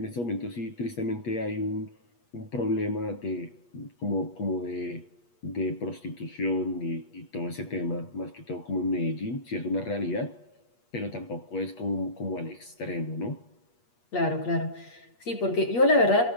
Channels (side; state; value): right; late; 8.4 ms